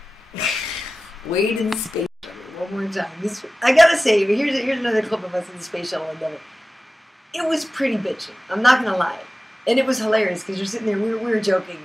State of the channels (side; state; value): both; normal; correlation 0.96